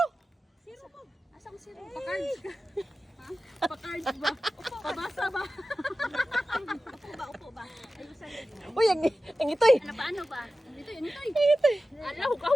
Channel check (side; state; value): both; normal; correlation 0.95